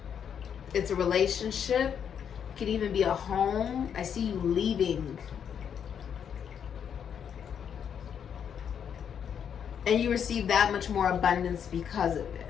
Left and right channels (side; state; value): right; quieter; 8.0 dB